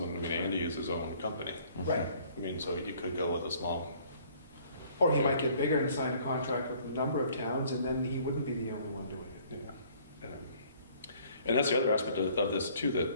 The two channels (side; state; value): both; inverted; correlation -0.58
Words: I mean, Andy is his own company. Right. I mean, so you could go with a small, Or he might get bigger and sign a contract with a number of towns, and then he wouldn't be the only one doing it. yeah. And that's the other aspect of this too